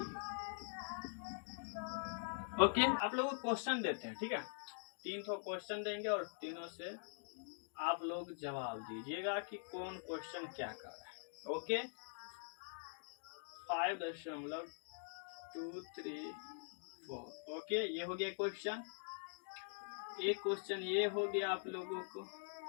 ओके, आप लोगों को क्वेश्चन देते हैं, ठीक है, 3 क्वेश्चन देंगे और तीनों से आप लोग जवाब दीजिएगा कि कौन क्वेश्चन क्या कर रहा है। ओके, 5.234। ओके, ये हो गया क्वेश्चन। एक क्वेश्चन ये हो गया आप लोगों को,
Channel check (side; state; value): right; silent; digital silence